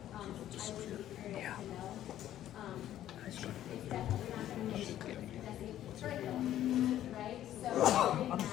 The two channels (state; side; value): quieter; right; 12.2 dB